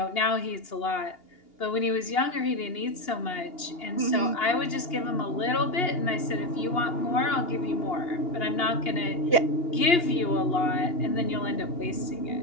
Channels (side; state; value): right; late; 2.8 ms